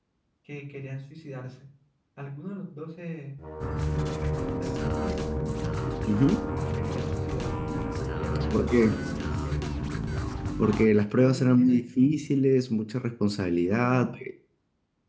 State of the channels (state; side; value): identical; both; correlation 1.00